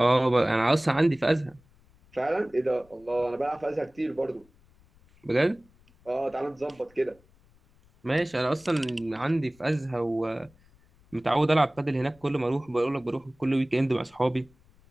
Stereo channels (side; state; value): left; noise; rumble, 30 dB below the sound